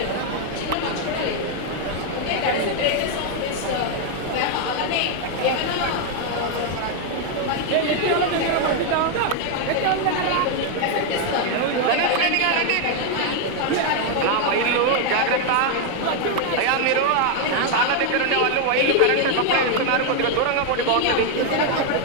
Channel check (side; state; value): both; different; correlation 0.01